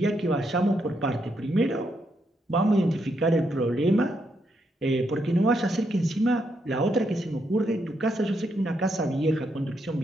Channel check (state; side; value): normal; both; correlation 0.79